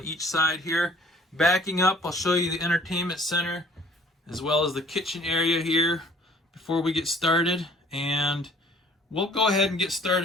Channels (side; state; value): both; normal; correlation 0.55